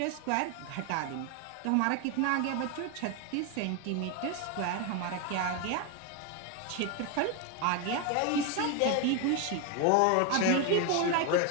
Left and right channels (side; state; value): both; different; correlation 0.01